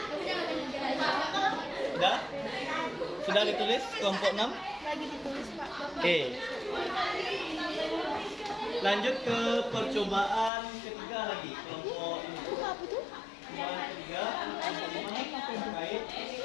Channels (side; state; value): right; drops out; at 10.5 s